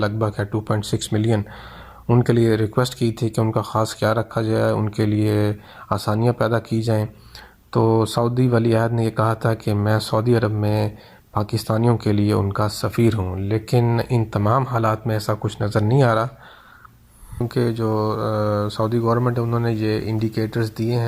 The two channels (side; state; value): both; identical; correlation 1.00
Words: بھگ ہے، 2.6 ملین، ان کے لیے ریکویسٹ کی تھی کہ ان کا خاص خیال رکھا جائے، ان کے لیے آسانیاں پیدا کی جائیں۔ تو سعودی ولی عہد نے یہ کہا تھا کہ میں سعودی عرب میں پاکستانیوں کے لیے ان کا سفیر ہوں، لیکن ان تمام حالات میں ایسا کچھ نظر نہیں آ رہا، کیونکہ جو سعودی گورنمنٹ ہے انہوں نے یہ انڈیکیٹرز دیے